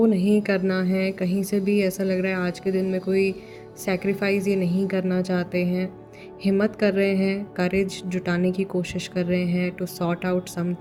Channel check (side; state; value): both; identical; correlation 1.00